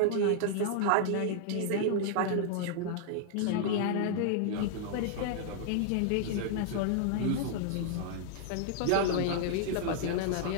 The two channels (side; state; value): both; different; correlation -0.01